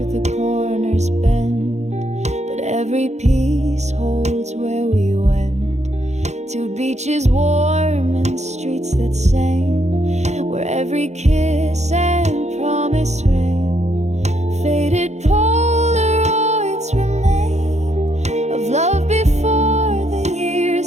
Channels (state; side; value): late; left; 0.33 ms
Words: the corners bend, but every piece holds where we went, to beaches warm and streets that sang, where every kiss and promise rang. Faded Polaroids remain of love before the